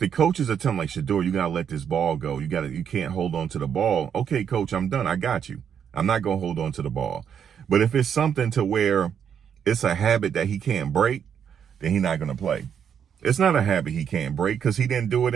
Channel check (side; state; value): left; quieter; 8.1 dB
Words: coaches are telling like, Shedeur, you gotta let this ball go. You can't hold on to the ball. Okay, coach, I'm done. I got you. I'm not gonna hold on to the ball. But if it's something to where it's a habit that he can't break, then he's not gonna play. It's not a habit he can't break because he didn't do it